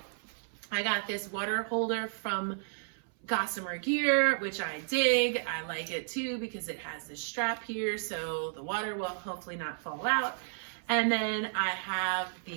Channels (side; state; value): left; silent; 56 dB below the other